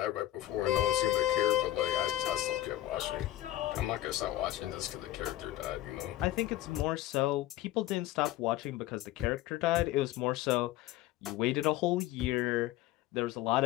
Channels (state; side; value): quieter; right; 15.1 dB